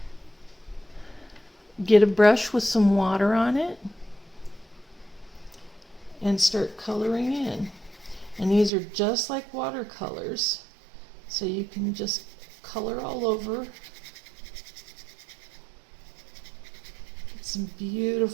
Get a brush with some water on it and start coloring in. And these are just like watercolors, so you can just color all over. Get some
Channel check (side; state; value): left; drops out; at 8.7 s